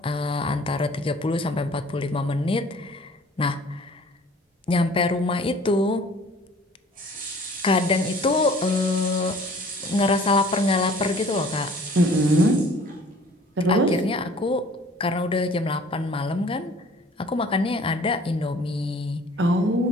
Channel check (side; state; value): both; normal; correlation 0.51